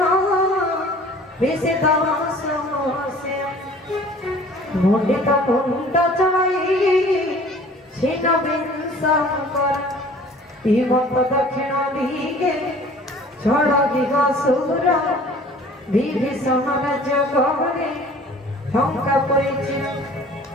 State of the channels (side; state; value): both; normal; correlation 0.49